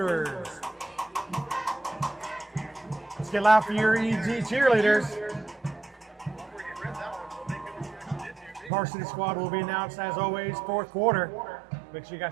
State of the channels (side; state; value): left; drops out; at 8.7 s